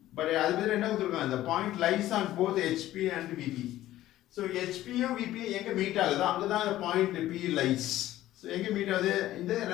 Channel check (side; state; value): right; quieter; 14.4 dB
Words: but அது பேர் என்ன கொடுத்துருக்காங்க, the point lies on both HP and VP. So HP and VP எங்க meet ஆகுது, அங்கதான் the point P lies. So எங்க மீட் ஆகுது, இந்த